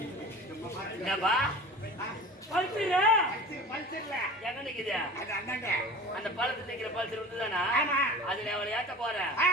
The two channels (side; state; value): both; normal; correlation 0.38